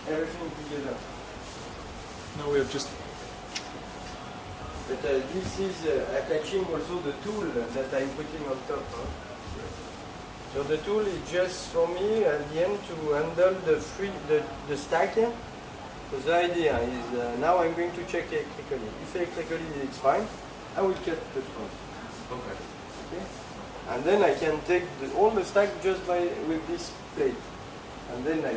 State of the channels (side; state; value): both; identical; correlation 1.00